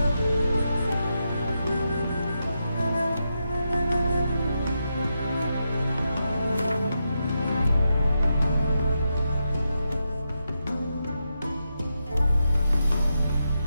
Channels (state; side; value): inverted; both; correlation -0.85